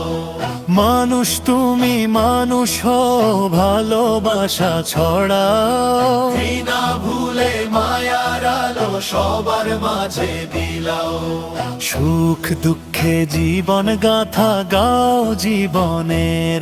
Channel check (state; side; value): identical; both; correlation 1.00